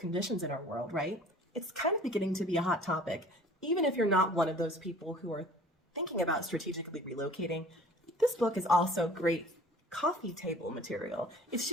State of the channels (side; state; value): both; normal; correlation 0.49